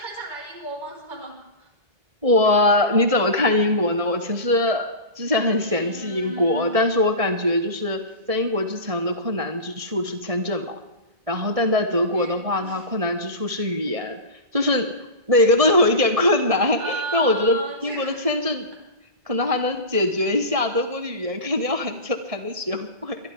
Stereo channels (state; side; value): late; left; 1.7 ms